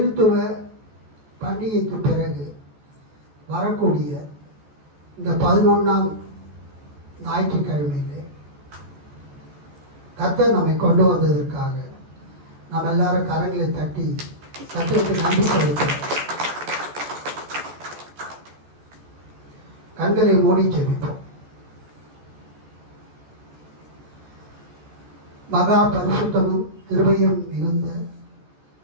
பண்டிகைக்கு பிறகு வரக்கூடிய இந்த 11ஆம் ஞாயிற்றுக்கிழமையிலே கர்த்தர் நம்மை கொண்டு வந்ததற்காக நாம் எல்லாரும் கரங்களை தட்டி கர்த்தருக்கு நன்றி செலுத்துகிறோம். கண்களை மூடி ஜெபிப்போம். மகா பரிசுத்தமும் கிருபையும் மிகுந்த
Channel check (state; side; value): late; left; 14 ms